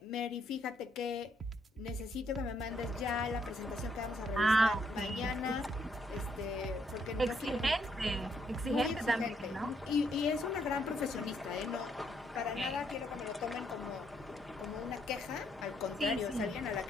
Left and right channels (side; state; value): both; normal; correlation 0.73